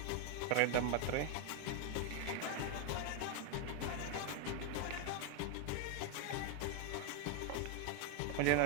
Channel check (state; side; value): different; both; correlation 0.01